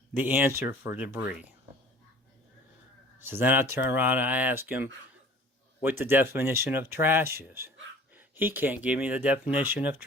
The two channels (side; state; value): both; normal; correlation 0.47